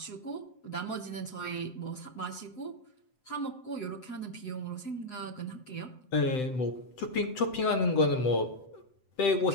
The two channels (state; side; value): late; right; 7.8 ms